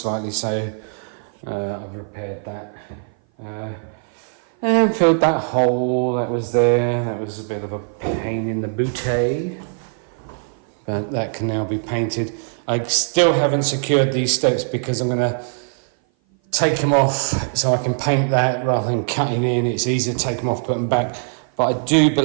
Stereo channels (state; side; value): silent; left; 57 dB below the other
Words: so I've repaired that. And filled that hole that was there. That was a bit of a pain in the booty, but that can now be painted. I still haven't secured these steps because I'm going to take them off so I can paint that rather than cutting in. It's easier to take them off, put them back. But I do